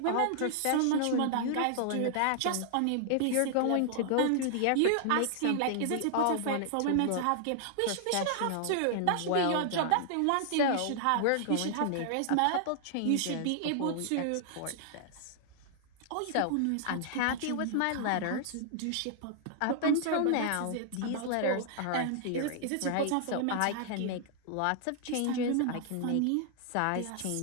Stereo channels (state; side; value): different; both; correlation -0.01